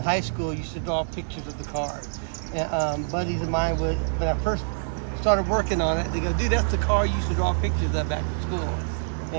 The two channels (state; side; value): silent; left; digital silence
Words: school I used to draw pictures of the car. And buddies of mine would, when I first started working on it, they go, dude, that's the car you used to draw pictures of back in school.